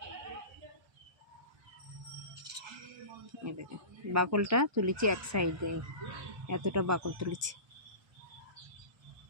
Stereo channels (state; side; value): late; left; 1.2 ms